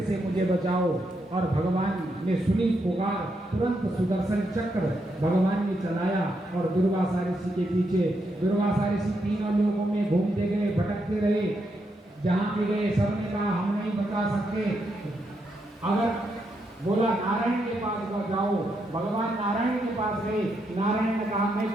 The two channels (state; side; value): normal; both; correlation 0.81